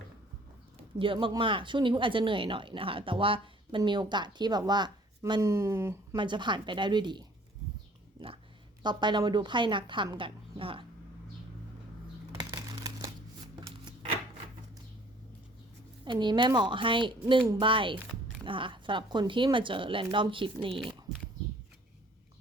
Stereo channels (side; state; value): both; normal; correlation 0.55